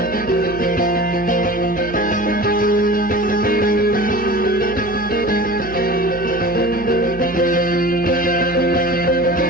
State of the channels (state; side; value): noise; right; hum, 14 dB below the sound